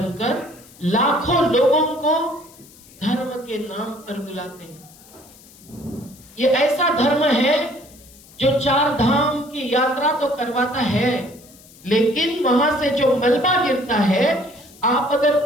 लाखों लोगों को धर्म के नाम पर बुलाते हैं। ये ऐसा धर्म है जो 4 धाम की यात्रा तो करवाता है, लेकिन वहां से जो मलबा गिरता है, आप अगर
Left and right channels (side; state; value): left; noise; hiss, 24 dB below the sound